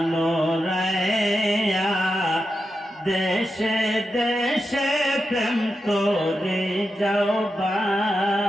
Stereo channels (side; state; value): both; normal; correlation 0.88